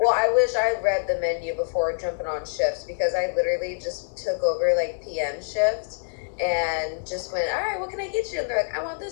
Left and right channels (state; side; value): silent; right; digital silence